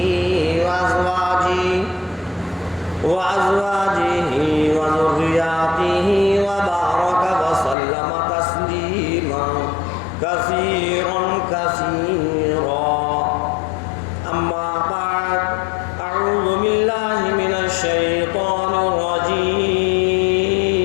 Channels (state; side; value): drops out; right; at 7.8 s